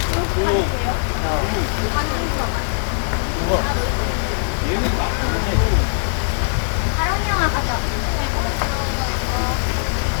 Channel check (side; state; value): right; silent; digital silence